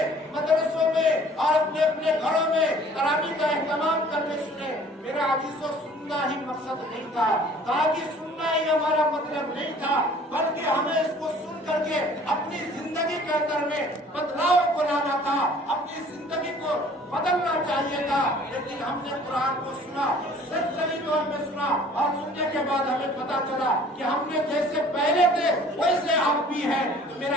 مدرسوں میں اور اپنے اپنے گھروں میں، تراویح کا اہتمام کرنے سنے. میرے عزیزوں سننا ہی مقصد نہیں تھا، تاکہ سننا ہی ہمارا مطلب نہیں تھا، بلکہ ہمیں اس کو سن کر کے اپنی زندگی کے اندر میں بدلاؤ کو لانا تھا، اپنی زندگی کو بدلنا چاہیے تھا. لیکن ہم نے قرآن کو سنا، سچی طور میں سنا، اور سننے کے بعد ہمیں پتا چلا کہ ہم نے جیسے پہلے تھے ویسے آپ بھی ہیں. تو میرے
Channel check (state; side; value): normal; both; correlation 0.52